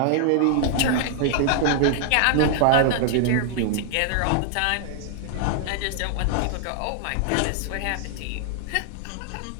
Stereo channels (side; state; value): both; different; correlation 0.00